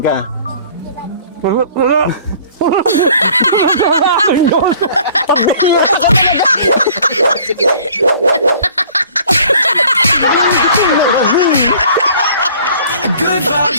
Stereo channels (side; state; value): both; inverted; correlation -0.52